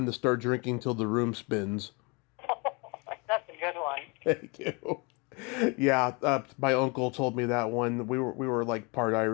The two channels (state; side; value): quieter; right; 30.0 dB